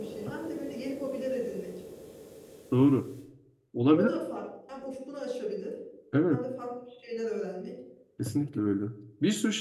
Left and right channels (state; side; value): identical; both; correlation 1.00